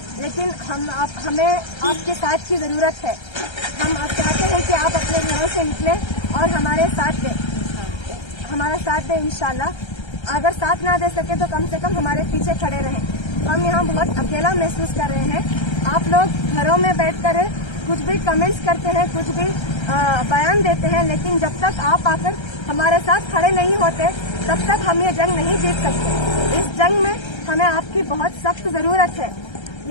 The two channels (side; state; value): right; late; 1.3 ms